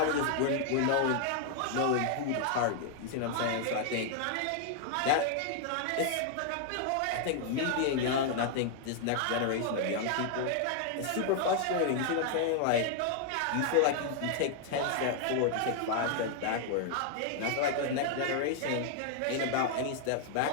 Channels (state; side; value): different; both; correlation 0.00